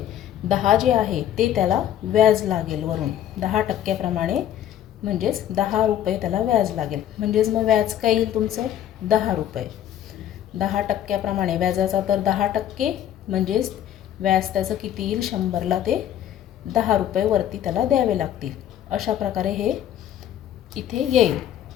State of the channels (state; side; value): quieter; right; 11.0 dB